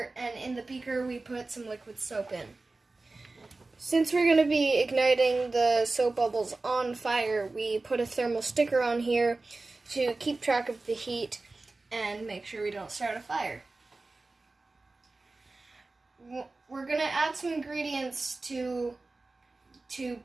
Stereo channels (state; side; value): quieter; left; 3.4 dB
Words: and in the beaker we put some liquid soap in. Since we're going to be igniting the soap bubbles on fire, we put a thermal sticker on here to keep track of the heat and make sure we don't start a fire. We're going to add some ingredients to